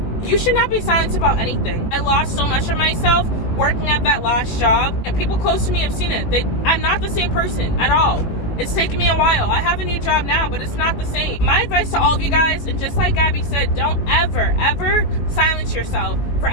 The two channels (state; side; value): late; right; 18 ms